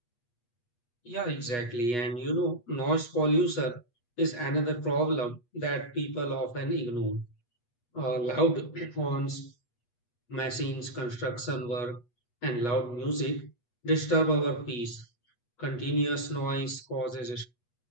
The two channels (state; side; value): late; right; 8.3 ms